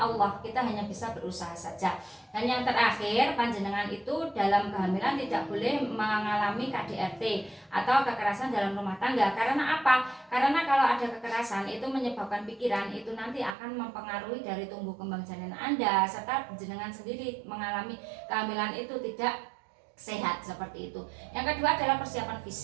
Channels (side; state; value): left; drops out; at 13.6 s